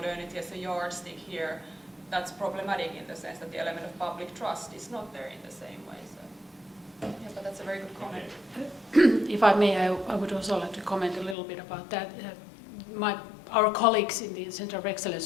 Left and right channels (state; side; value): drops out; right; at 11.4 s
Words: as a yardstick here, that's problematic in the sense that the element of public trust is not there in the same way. So, yeah, but that's a very good comment. If I may, I would also like to comment a little bit about that. Our colleagues in the Center of